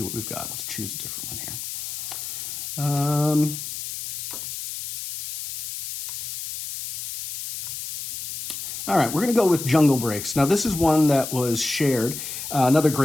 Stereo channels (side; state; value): left; noise; hiss, 7 dB below the sound